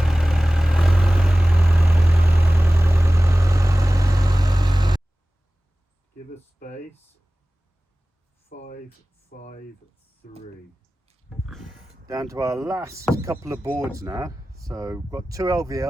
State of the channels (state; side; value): normal; both; correlation 0.97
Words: Give us space. 5, 5, 3. Down to our last couple of boards now. So we've got 2